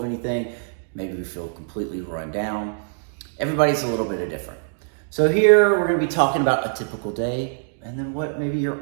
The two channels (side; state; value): left; silent; digital silence